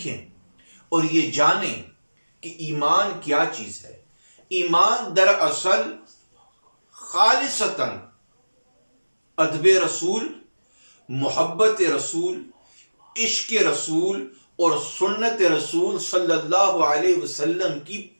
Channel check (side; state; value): both; inverted; correlation -1.00